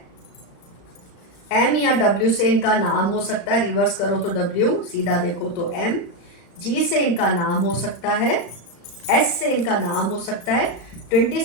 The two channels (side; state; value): right; late; 35 ms